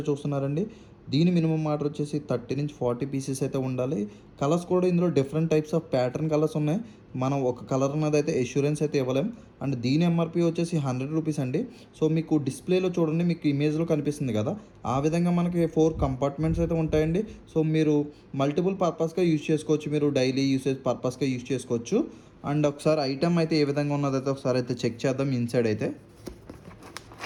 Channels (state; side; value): identical; both; correlation 1.00